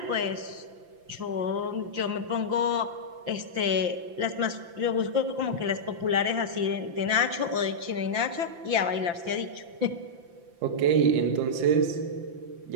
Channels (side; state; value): left; late; 5.8 ms